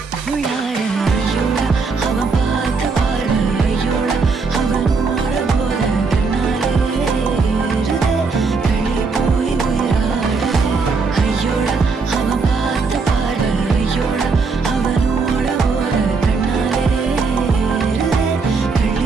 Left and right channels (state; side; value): quieter; left; 4.5 dB